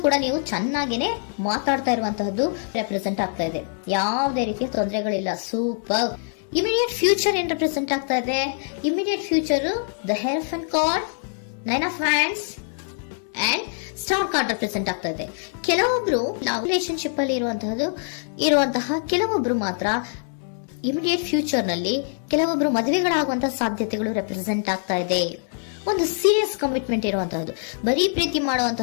ಕೂಡ ನೀವು ಚೆನ್ನಾಗೇನೆ ಮಾತಾಡ್ತಾ ಇರುವಂತಹದ್ದು ರೆಪ್ರೆಸೆಂಟ್ ಆಗ್ತಾ ಇದೆ. ಯಾವುದೇ ರೀತಿಯ ತೊಂದರೆಗಳಿಲ್ಲ, ಸೂಪರ್. ಇಮಿಡಿಯೇಟ್ ಫ್ಯೂಚರ್ ಏನ್ ರೆಪ್ರೆಸೆಂಟ್ ಆಗ್ತಾ ಇದೆ? Immediate future the Hierophant card, 9 of wands and star card represent ಆಗ್ತಾ ಇದೆ. ಕೆಲವೊಬ್ರು ರಿಲೇಶನ್ಶಿಪ್ ಅಲ್ಲಿ ಇರುವಂತಹ ಕೆಲವೊಬ್ರು ಮಾತ್ರ ಇಮಿಡಿಯೇಟ್ ಫ್ಯೂಚರ್ ನಲ್ಲಿ ಕೆಲವೊಬ್ರು ಮದುವೆಗಳಾಗುವಂತಹ ಸಾಧ್ಯತೆಗಳು ರೆಪ್ರೆಸೆಂಟ್ ಆಗ್ತಾ ಇದೆ. ಒಂದು ಸೀರಿಯಸ್ ಕಮಿಟ್ಮೆಂಟ್ ಇರುವಂತಹದ್ದು, ಬರೀ ಪ್ರೀತಿ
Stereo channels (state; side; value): silent; right; digital silence